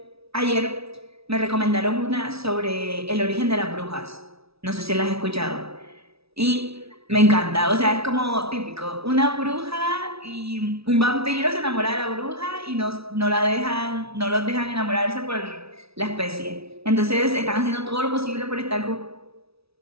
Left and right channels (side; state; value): left; late; 0.77 ms